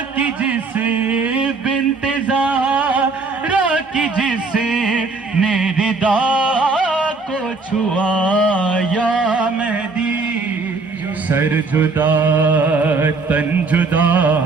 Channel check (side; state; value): left; quieter; 4.0 dB